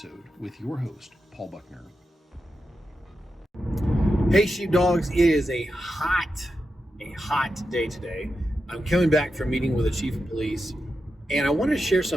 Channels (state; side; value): normal; both; correlation 0.89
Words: with your host, Paul Buckner. Hey sheepdogs, it is a hot day today. I'm coming back from meeting with the chief of police, and I want to share